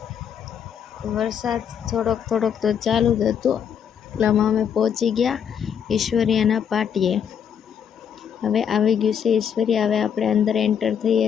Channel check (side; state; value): right; quieter; 8.1 dB